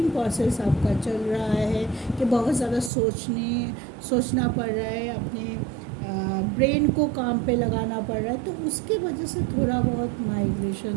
प्रोसेस आपका चल रहा है कि बहुत ज़्यादा सोचना पड़ रहा है, अपने ब्रेन को काम पे लगाना पड़ रहा है, तो उसके वजह से थोड़ा बहुत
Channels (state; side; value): drops out; left; at 2.9 s